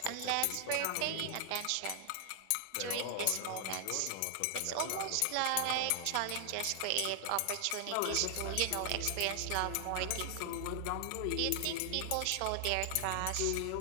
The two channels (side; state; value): both; different; correlation 0.00